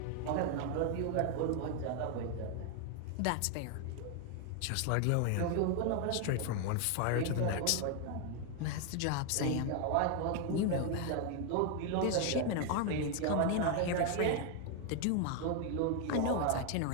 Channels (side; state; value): both; different; correlation 0.01